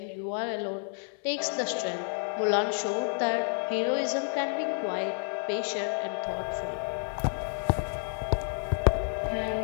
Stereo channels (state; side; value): silent; right; digital silence